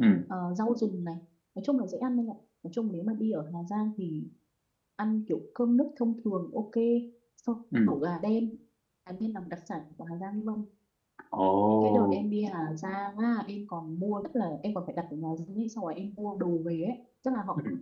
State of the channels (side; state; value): both; identical; correlation 1.00